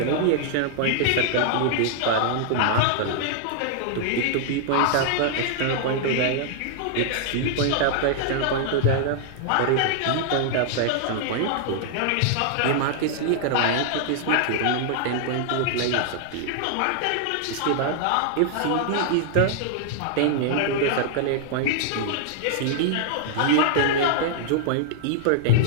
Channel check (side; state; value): both; different; correlation -0.01